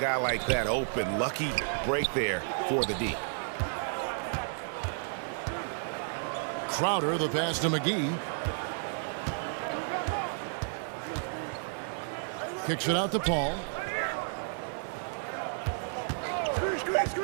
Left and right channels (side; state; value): left; silent; 57 dB below the other